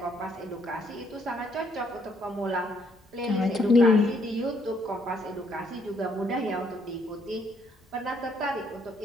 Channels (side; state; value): both; normal; correlation 0.69